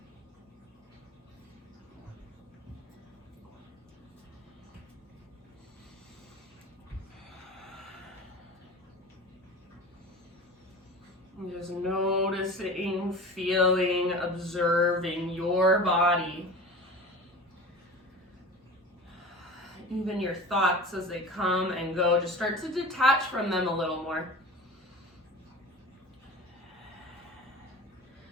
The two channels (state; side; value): normal; both; correlation 0.35